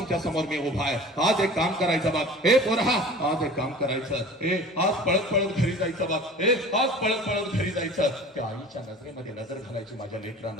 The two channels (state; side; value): normal; both; correlation 0.41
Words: समोर मी उभा आहे. आज एक काम करायचं बघ. हे पोरा, आज एक काम करायचं. हे आज पळत पळत घरी जायचं बघ. हे आज पळत पळत घरी जायचं. त्या आईच्या नजरेमध्ये नजर घालायची माझ्या